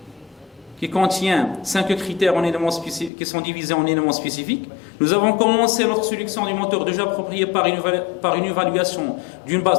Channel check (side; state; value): right; drops out; at 3.1 s